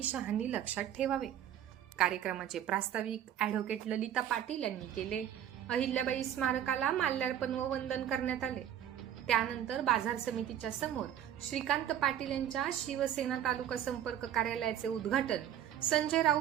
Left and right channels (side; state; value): left; quieter; 10.5 dB